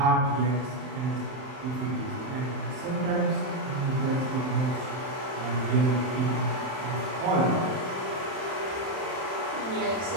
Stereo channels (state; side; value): late; left; 31 ms